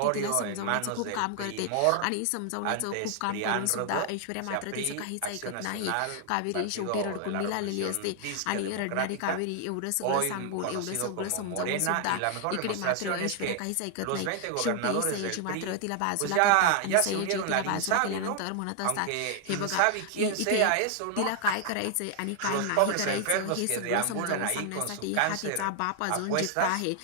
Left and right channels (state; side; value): different; both; correlation 0.00